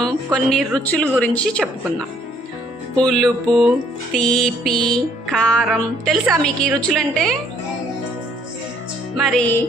కొన్ని రుచుల గురించి చెప్పుకుందాం. పులుపు, తీపి, కారం. తెలుసా మీకు ఈ రుచులంటే? మరి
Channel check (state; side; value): normal; both; correlation 0.64